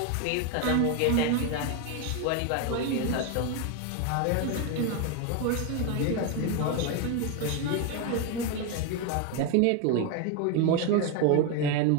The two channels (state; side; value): different; both; correlation 0.01